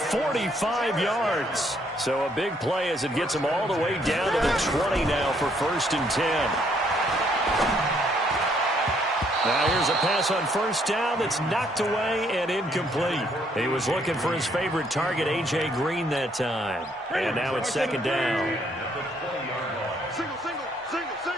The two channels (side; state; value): both; normal; correlation 0.68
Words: 45 yards. So a big play as it gets him all the way down to the 20 now for 1st and 10. Now here's a pass on first down that's knocked away and incomplete. He was looking for his favorite target, A.J. Green, that time. And now it's 2nd down. Single.